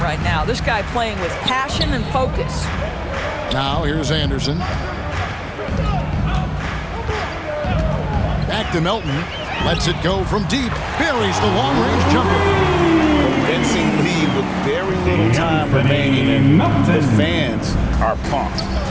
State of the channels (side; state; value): both; identical; correlation 1.00